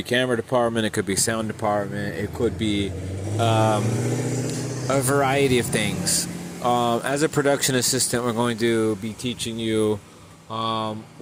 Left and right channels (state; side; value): identical; both; correlation 1.00